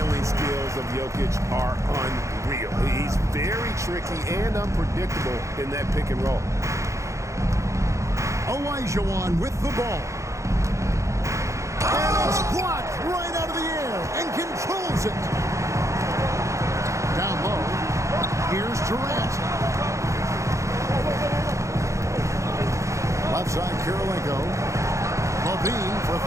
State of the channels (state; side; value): late; left; 0.15 ms